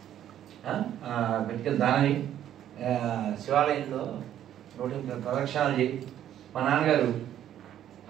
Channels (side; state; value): left; quieter; 11.1 dB